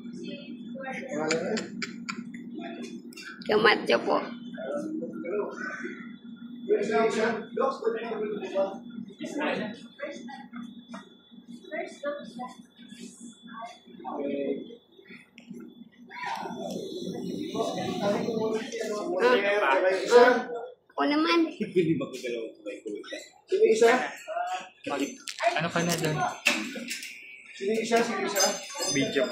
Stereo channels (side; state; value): both; identical; correlation 1.00